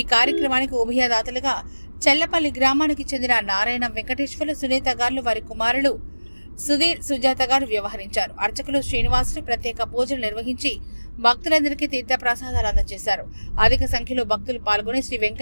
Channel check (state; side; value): inverted; both; correlation -1.00